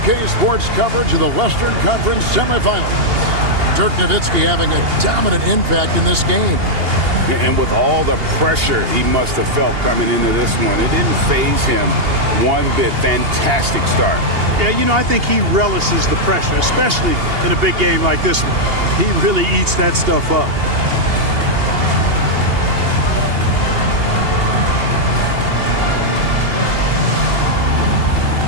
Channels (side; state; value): left; late; 2.8 ms